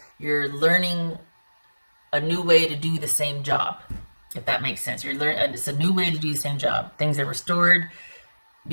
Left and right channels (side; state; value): both; inverted; correlation -1.00